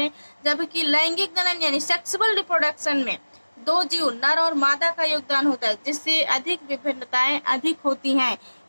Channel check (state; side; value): inverted; both; correlation -1.00